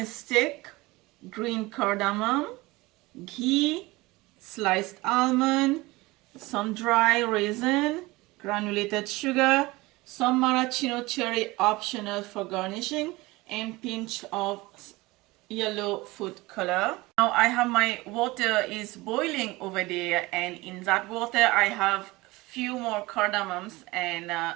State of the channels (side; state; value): left; quieter; 21.3 dB